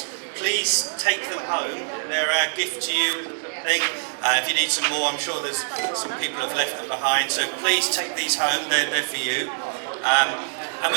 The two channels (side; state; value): left; silent; digital silence